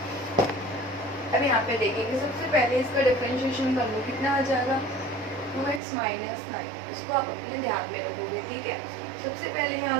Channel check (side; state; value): left; drops out; at 5.8 s